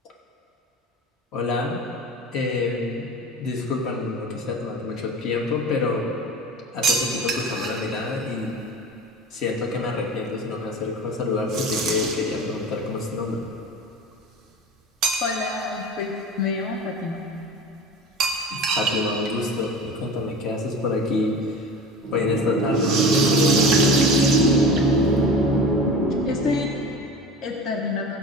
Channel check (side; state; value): both; normal; correlation 0.33